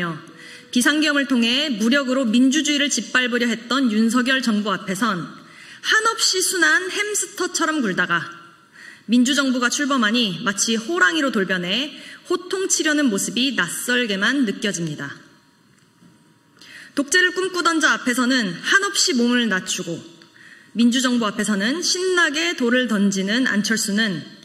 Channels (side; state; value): both; identical; correlation 1.00